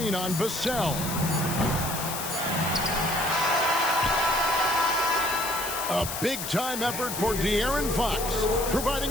on Vassell. A big-time effort for De'Aaron Fox,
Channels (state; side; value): noise; left; hiss, 6 dB below the sound